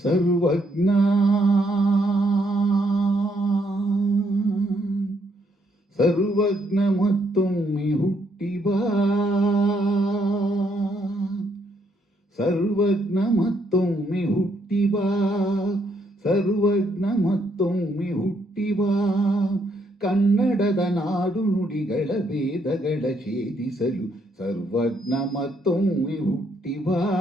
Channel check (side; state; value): both; normal; correlation 0.73